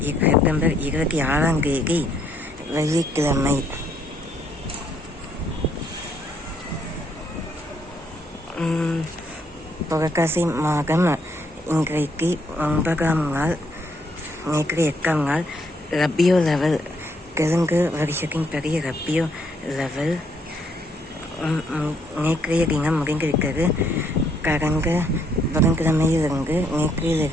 செப்டம்பர் 26ஆம் தேதி வெள்ளிக்கிழமை. புரட்டாசி மாதம் இன்றைக்கு 9ஆம் நாள், நேற்று 8ஆம் நாள். ரபியோ லெவல், தெலுங்கு வருஷத்தின் படி ரபியோ லெவல் நேற்றைய தினம் முடிந்திருக்கிறது. கடந்த புதன்கிழமையிலிருந்து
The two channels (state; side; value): normal; both; correlation 0.70